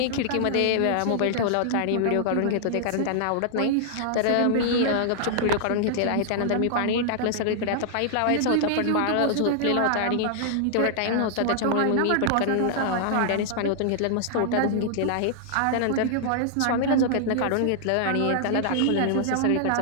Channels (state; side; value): different; both; correlation -0.01